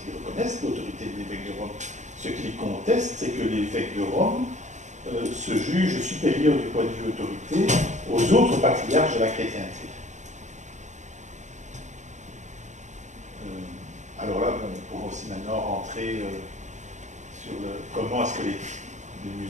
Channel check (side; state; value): left; late; 0.34 ms